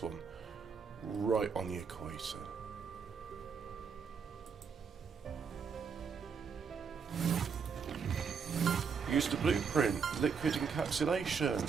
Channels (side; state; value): left; quieter; 6.0 dB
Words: one right on the equator. Use the blueprint. Liquid encapsulation.